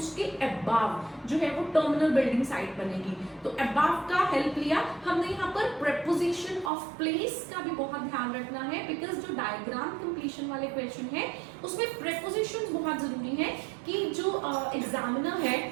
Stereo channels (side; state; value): left; drops out; at 6.7 s